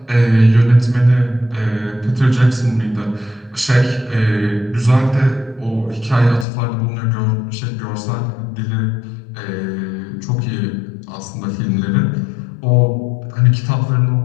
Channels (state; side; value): drops out; right; at 6.5 s